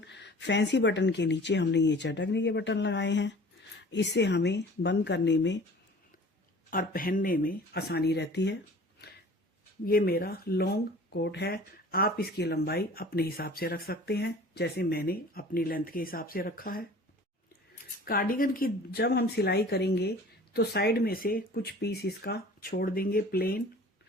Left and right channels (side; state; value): both; normal; correlation 0.45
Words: फैंसी बटन के नीचे हमने ये चटकने के बटन लगाए हैं। इससे हमें बंद करने में और पहनने में आसानी रहती है। ये मेरा लॉन्ग कोट है। आप इसकी लंबाई अपने हिसाब से रख सकते हैं, जैसे मैंने अपनी लेंथ के हिसाब से रखा है। कार्डिगन की जब हम सिलाई करेंगे तो साइड में से कुछ पीस इसका छोड़ देंगे प्लेन।